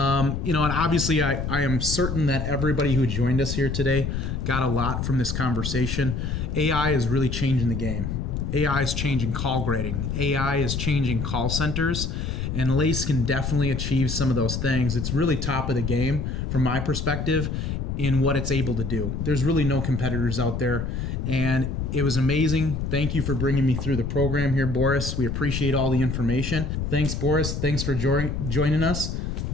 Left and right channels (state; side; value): noise; left; rumble, 3 dB below the sound